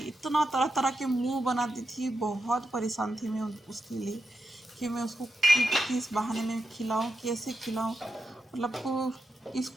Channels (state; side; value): normal; both; correlation 0.87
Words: इतना तरह तरह के मुंह बनाती थी। बहुत परेशान थी मैं उसके लिए कि मैं उसको किस बहाने में खिलाऊं, कैसे खिलाऊं। मतलब